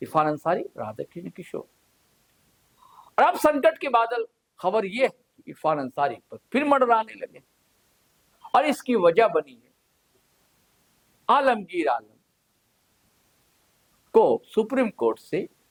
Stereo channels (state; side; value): identical; both; correlation 1.00